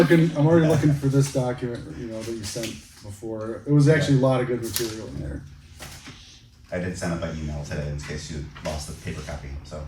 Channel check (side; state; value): both; identical; correlation 1.00